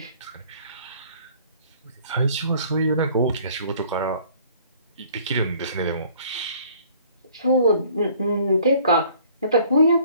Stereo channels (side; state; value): both; inverted; correlation -0.56